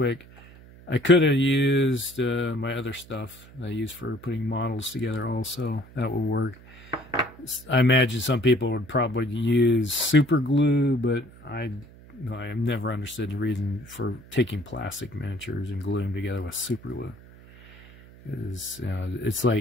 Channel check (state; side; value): noise; right; hum, 21 dB below the sound